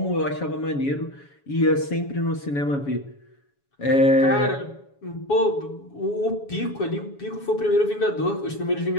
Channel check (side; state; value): right; late; 7.1 ms